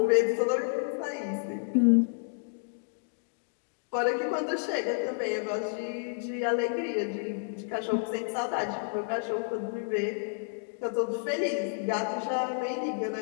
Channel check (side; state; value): right; silent; digital silence